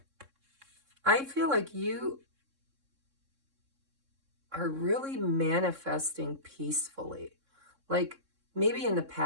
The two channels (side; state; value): left; late; 3.6 ms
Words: I feel like you are really manifesting peacefully. Like maybe in the